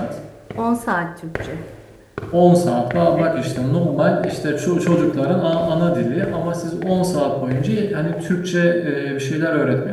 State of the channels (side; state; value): both; identical; correlation 1.00